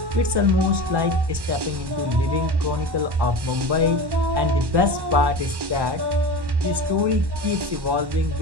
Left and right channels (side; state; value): left; late; 1.1 ms